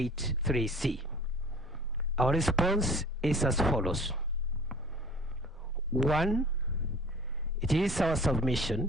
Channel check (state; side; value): normal; both; correlation 0.46